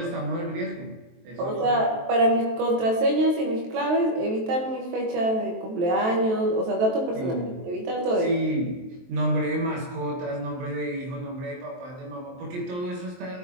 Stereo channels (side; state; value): left; late; 23 ms